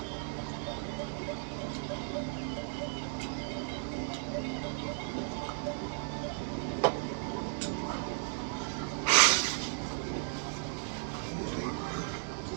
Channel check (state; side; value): silent; left; 54 dB below the other